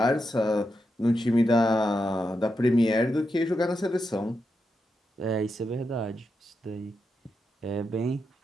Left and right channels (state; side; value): normal; both; correlation 0.86